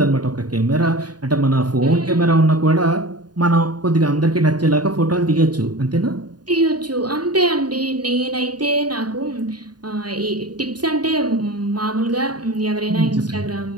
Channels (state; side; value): late; left; 0.70 ms